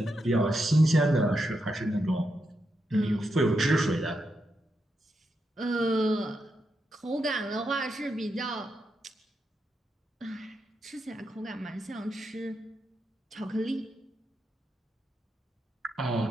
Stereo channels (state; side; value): normal; both; correlation 0.84